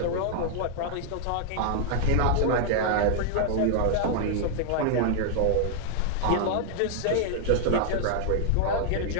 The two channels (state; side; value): different; both; correlation 0.00